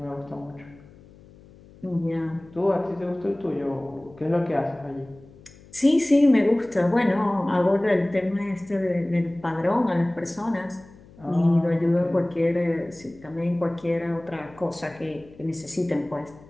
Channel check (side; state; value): left; noise; hum, 23 dB below the sound